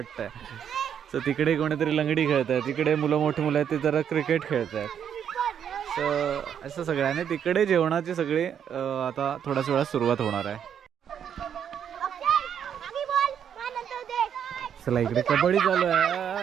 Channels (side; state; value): left; quieter; 8.6 dB